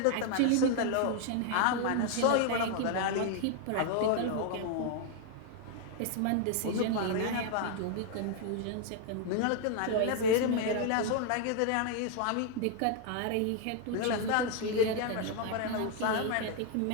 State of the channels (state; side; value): different; both; correlation 0.00